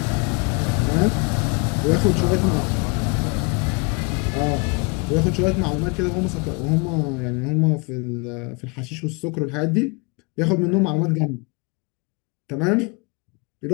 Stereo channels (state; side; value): quieter; right; 31.4 dB